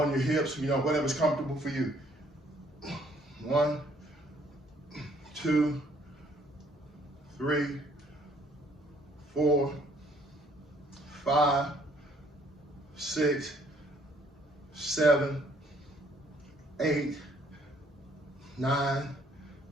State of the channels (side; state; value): both; normal; correlation 0.63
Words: your hips, whatever's comfortable for you. 1, 2, 3, 4, 5, 6, 7, 8, 9,